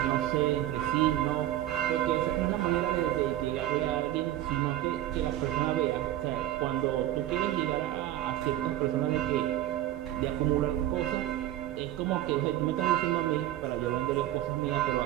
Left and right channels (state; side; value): quieter; left; 13.5 dB